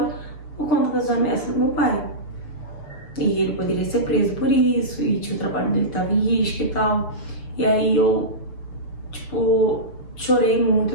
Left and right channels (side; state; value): right; late; 6.8 ms